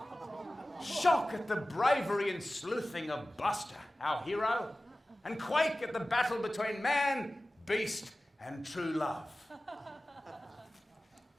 shock at the bravery and sleuthing of Buster, our hero, and quake at the battle between man, beast, and true love.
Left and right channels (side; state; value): both; normal; correlation 0.96